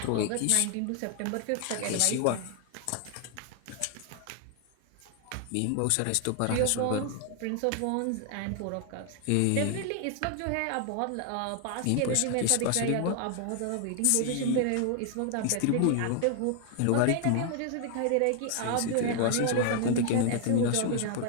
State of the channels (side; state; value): both; different; correlation 0.00